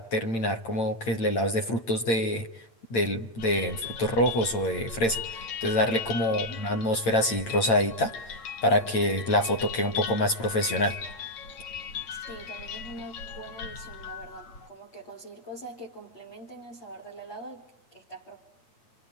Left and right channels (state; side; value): late; right; 8.8 ms